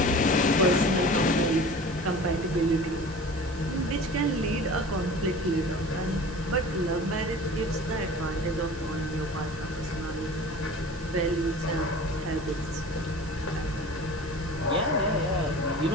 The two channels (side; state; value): right; noise; hiss, 19 dB below the sound